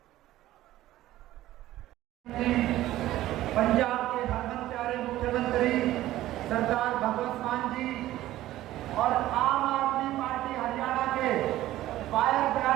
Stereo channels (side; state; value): left; quieter; 14.9 dB